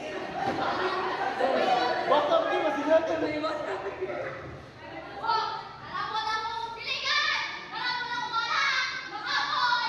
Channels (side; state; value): both; identical; correlation 1.00